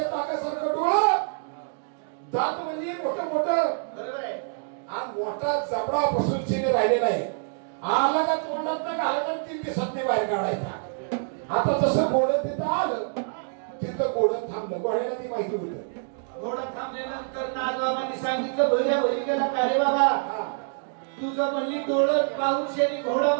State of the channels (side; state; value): left; silent; digital silence